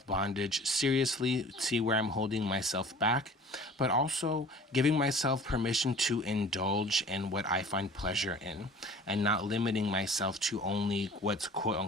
seriously, see where I'm holding myself back, but also giving myself permission to indulge in what I find pleasure in, and not limiting myself to only what's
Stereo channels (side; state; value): both; normal; correlation 0.46